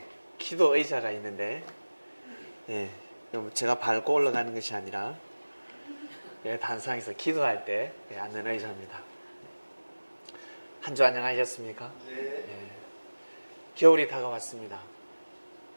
기도 의자가 있는데, 제가 밟고 올라가는 것이 아니라, 단상에서 기도할 때 앉는 의자입니다. 한 주 안녕하셨습니까? 네. 겨울이 다가왔습니다.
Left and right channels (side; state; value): both; inverted; correlation -1.00